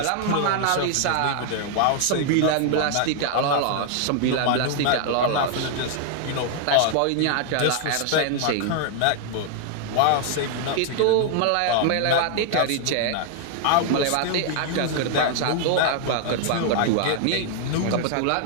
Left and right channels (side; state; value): both; different; correlation 0.00